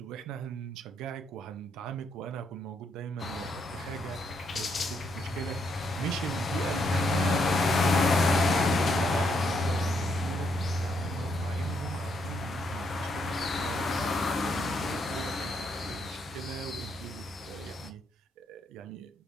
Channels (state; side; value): normal; both; correlation 0.76